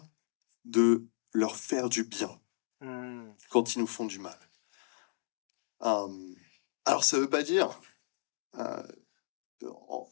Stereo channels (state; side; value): silent; right; digital silence